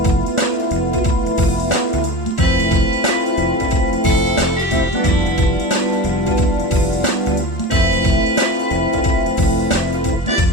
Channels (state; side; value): late; right; 1.4 ms